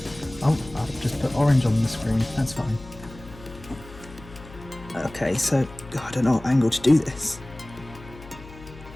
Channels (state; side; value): noise; left; hum, 18 dB below the sound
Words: Oh, I'll just put orange on the screen, that's fine. Okay, so I don't know what angle to do this.